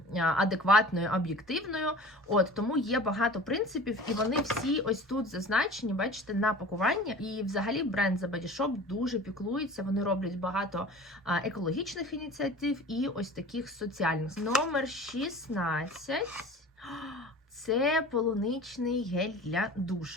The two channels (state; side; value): normal; both; correlation 0.40